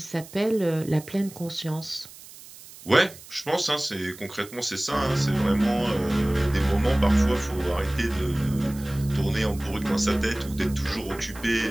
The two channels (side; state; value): right; noise; hiss, 18 dB below the sound